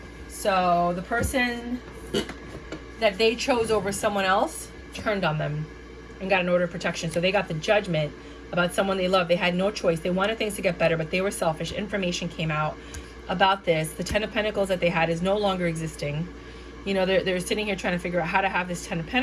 So the person that they chose over someone else turned on them and got an order of protection. So they got the judgment about someone they love. They had no choice. They wanted things to get better, but they were selfish. Information came out about this. The Ten of Pentacles that they had is no longer existing. You know, they're sitting here trying to figure out how to have this Ten of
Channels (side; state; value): both; identical; correlation 1.00